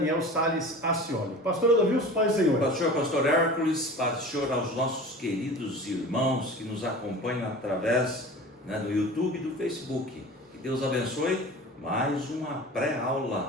Salles Ascioli. Pastor Adolvilson, paz do Senhor. Pastor Hércules, pastor aos nossos queridos irmãos que nos acompanham através do YouTube e do Facebook. Que Deus abençoe. Mais uma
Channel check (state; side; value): normal; both; correlation 0.37